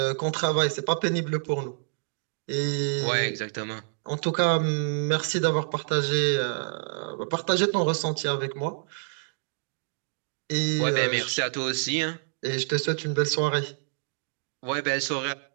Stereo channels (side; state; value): left; silent; digital silence